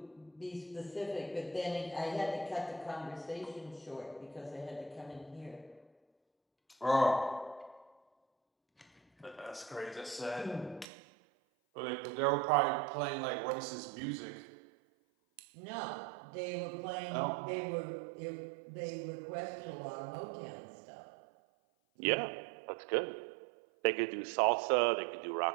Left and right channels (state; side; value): drops out; left; at 10.9 s